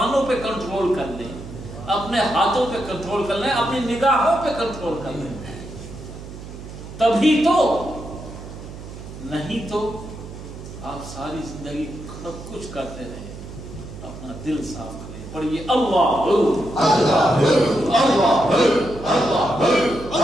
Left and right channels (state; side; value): noise; right; hum, 13 dB below the sound